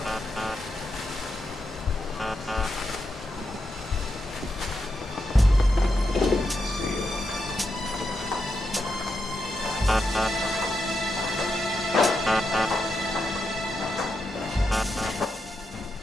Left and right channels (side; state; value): both; normal; correlation 0.85